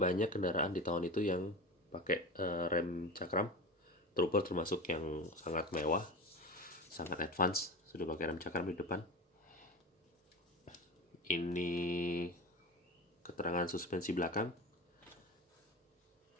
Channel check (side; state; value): both; normal; correlation 0.29